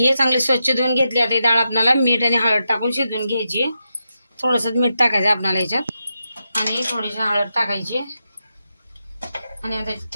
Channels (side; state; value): both; inverted; correlation -0.87